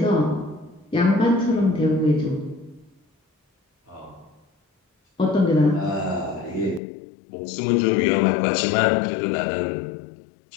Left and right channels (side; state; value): right; drops out; at 6.8 s